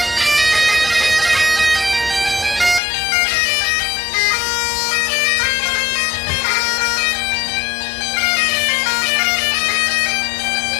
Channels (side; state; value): right; drops out; at 2.8 s